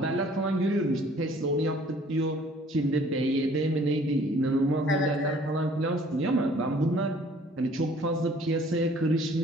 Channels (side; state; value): both; normal; correlation 0.55